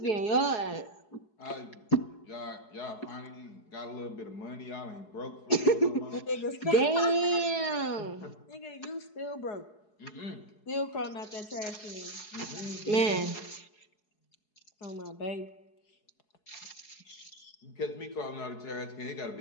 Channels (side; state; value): right; late; 4.7 ms